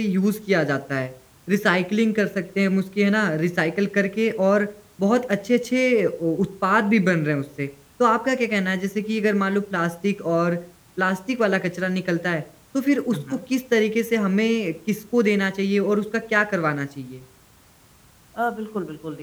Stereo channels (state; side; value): identical; both; correlation 1.00